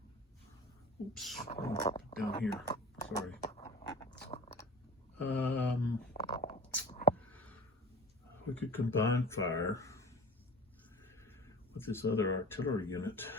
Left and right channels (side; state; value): both; normal; correlation 0.38